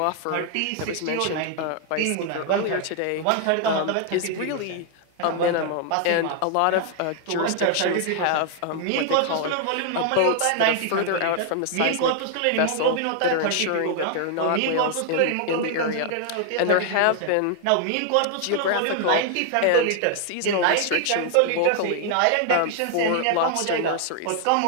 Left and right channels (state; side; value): different; both; correlation 0.00